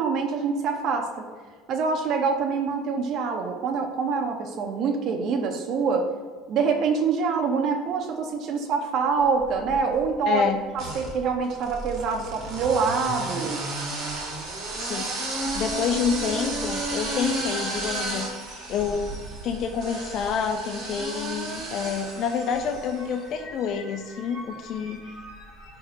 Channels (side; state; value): both; normal; correlation 0.45